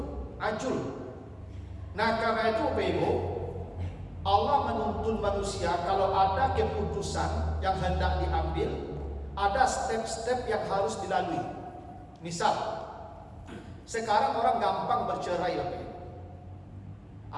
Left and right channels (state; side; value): identical; both; correlation 1.00